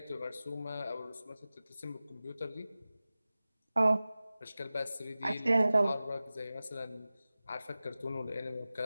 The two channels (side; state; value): both; inverted; correlation -0.96